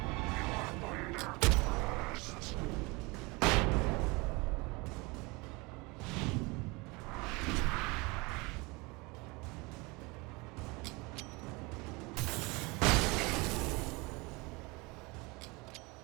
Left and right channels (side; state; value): left; quieter; 25.9 dB